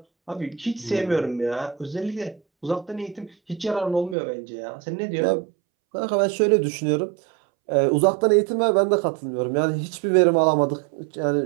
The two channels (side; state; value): left; drops out; at 4.2 s